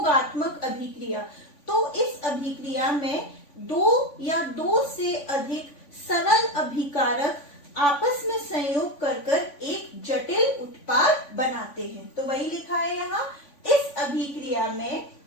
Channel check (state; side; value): late; right; 3.5 ms